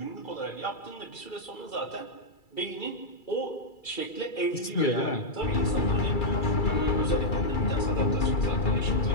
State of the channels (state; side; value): late; right; 2.3 ms